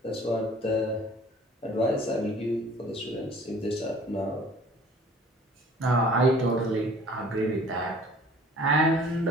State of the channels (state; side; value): normal; both; correlation 0.50